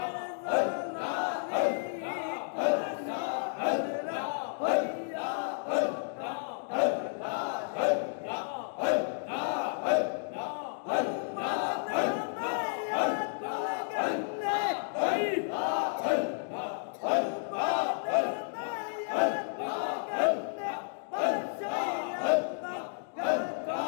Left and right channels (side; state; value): right; silent; digital silence